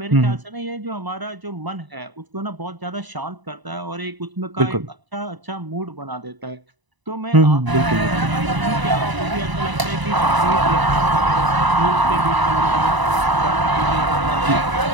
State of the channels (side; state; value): left; late; 1.0 ms